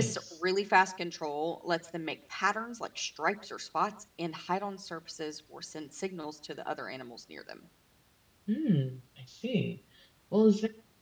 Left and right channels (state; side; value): identical; both; correlation 1.00